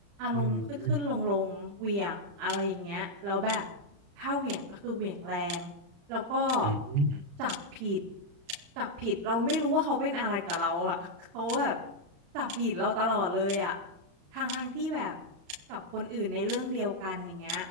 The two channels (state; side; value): late; left; 35 ms